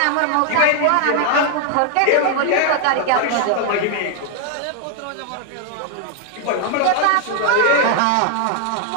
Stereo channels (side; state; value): both; different; correlation 0.00